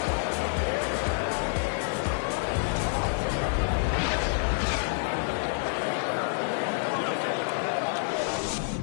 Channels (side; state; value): right; silent; digital silence